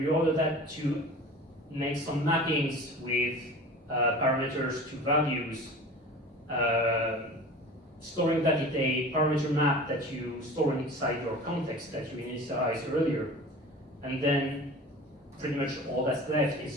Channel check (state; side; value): normal; both; correlation 0.38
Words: that to make some mappings with parameters to values, storing that in a parameter map that you store inside your context that you initialized earlier, and then pretty much all that's left